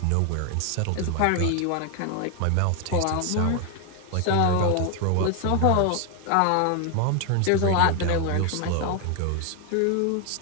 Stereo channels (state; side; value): different; both; correlation 0.01